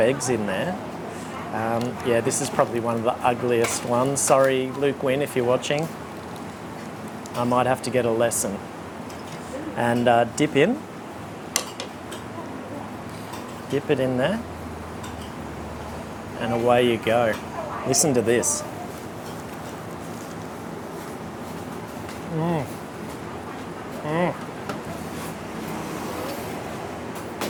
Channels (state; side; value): identical; both; correlation 1.00